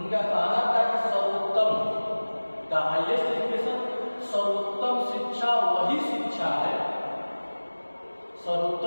कहना था कि सर्वोत्तम, द हाईएस्ट एजुकेशन, सर्वोत्तम शिक्षा वही शिक्षा है,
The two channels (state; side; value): inverted; both; correlation -1.00